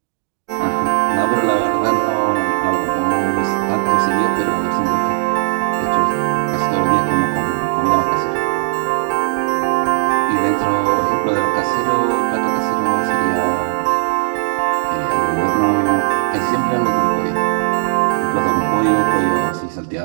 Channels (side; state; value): left; silent; 68 dB below the other